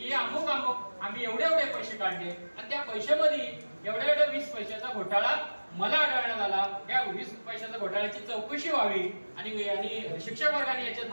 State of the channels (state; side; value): inverted; both; correlation -1.00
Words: अमुक आम्ही एवढे पैसे काढले आणि त्या पैशामध्ये एवढ्या 20 पैशाचा घोटाळा मला आढळण्यात आला. या 20 पैशाच्या घोटाळ्याची चौकशी व्हावी आणि शिक्षक वर्गाने याच्यात